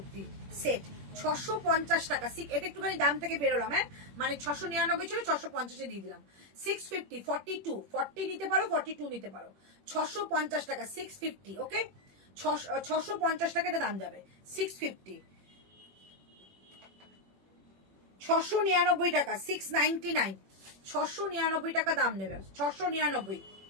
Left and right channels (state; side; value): late; left; 21 ms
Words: সেট, 650 টাকা। এটা একটুখানি দাম থেকে বেরোলাম, হ্যাঁ মানে 699 ছিল, 650-এ দিয়ে দিলাম। 650, 42, 40 নিতে পারো, 42 নিতে পারো। 650 টাকা, 650, ওকে। 650 টাকা এটা দাম যাবে, 650। 699 টাকা, 699, 699 টাকা দাম নেবে। 699,